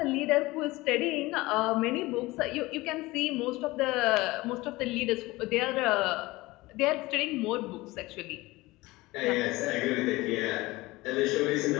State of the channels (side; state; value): right; quieter; 20.5 dB